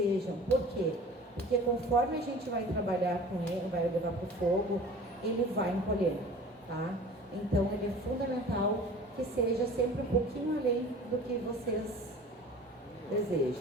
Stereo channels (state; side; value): normal; both; correlation 0.43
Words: Por quê? Porque conforme a gente vai trabalhar com ele, vai levar para o fogo, ele vai encolher, tá? Então, ele é fundamental que seja sempre um pouquinho além do que vocês